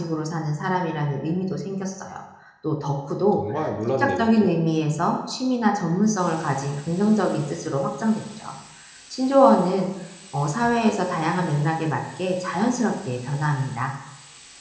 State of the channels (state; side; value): identical; both; correlation 1.00